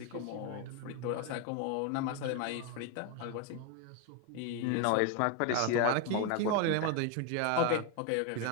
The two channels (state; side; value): different; both; correlation 0.02